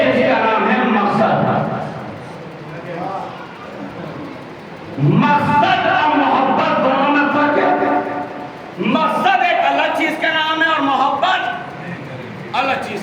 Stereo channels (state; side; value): identical; both; correlation 1.00